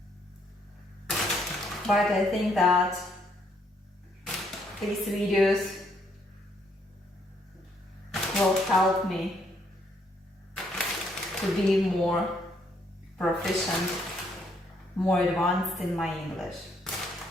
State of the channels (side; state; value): both; normal; correlation 0.71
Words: But I think that these videos will help me to be more proficient, more advanced in my English.